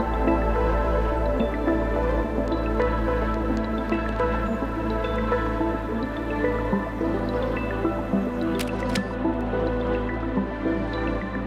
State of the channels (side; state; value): both; identical; correlation 1.00